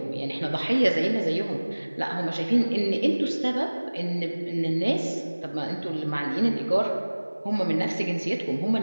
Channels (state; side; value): inverted; both; correlation -1.00